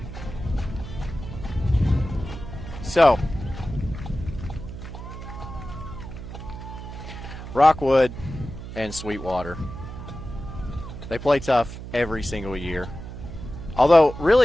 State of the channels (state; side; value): noise; right; hum, 10 dB below the sound